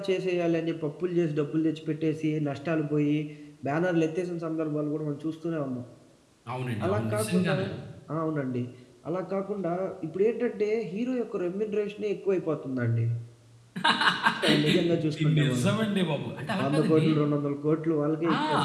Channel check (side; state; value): both; identical; correlation 1.00